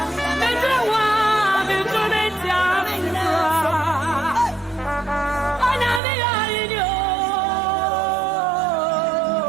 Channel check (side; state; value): left; drops out; at 6.0 s